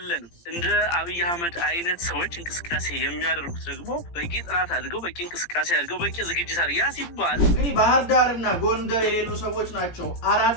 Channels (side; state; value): right; late; 17 ms